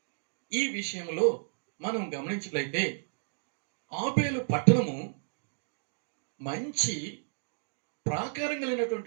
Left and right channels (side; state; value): left; silent; digital silence